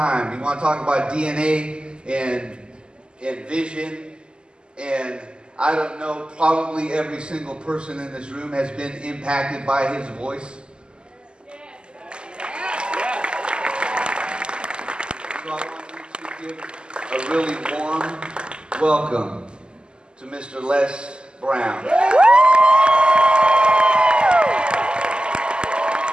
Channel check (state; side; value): late; left; 0.049 ms